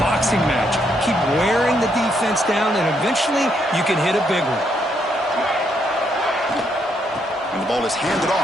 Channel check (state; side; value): normal; both; correlation 0.75